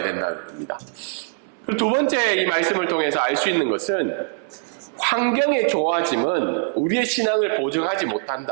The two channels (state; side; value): silent; left; 59 dB below the other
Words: 겁니다. 그리고 두 번째 이 말씀을 통해서 알 수 있는 것은 환경의 좋아짐은 우리의 신앙을 보증하지